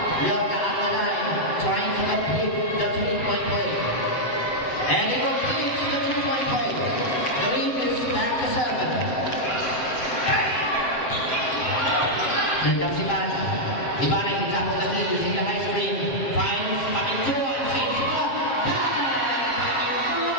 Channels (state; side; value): late; right; 7.6 ms